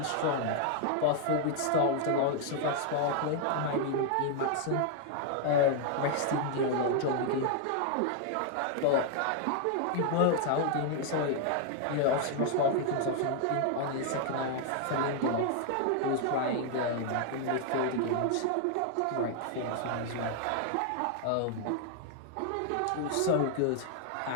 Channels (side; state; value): both; different; correlation 0.00